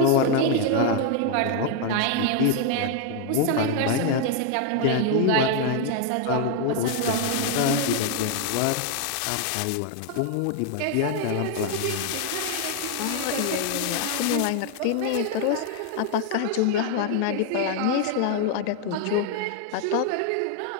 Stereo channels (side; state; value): both; different; correlation 0.00